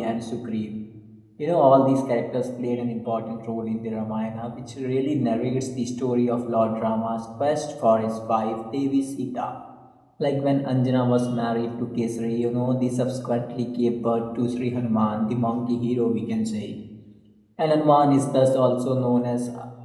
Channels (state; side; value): identical; both; correlation 1.00